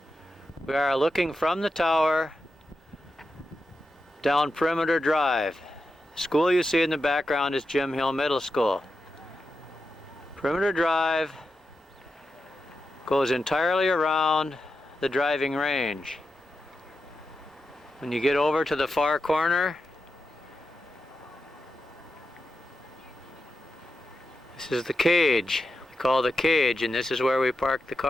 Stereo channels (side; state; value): both; normal; correlation 0.89